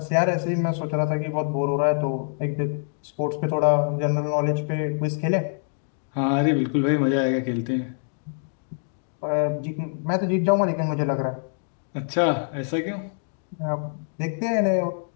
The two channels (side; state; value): right; silent; digital silence